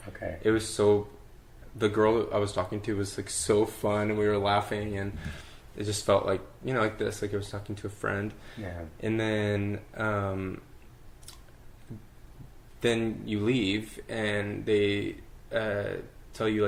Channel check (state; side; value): identical; both; correlation 1.00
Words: Okay. It was the girl I was talking to was like so fun, and we were laughing, and it just felt like like this, like I was talking to a friend. Yeah. And then you leave, and they tell you